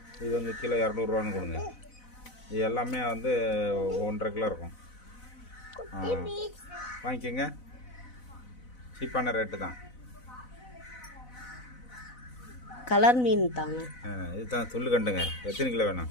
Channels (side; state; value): right; late; 4.0 ms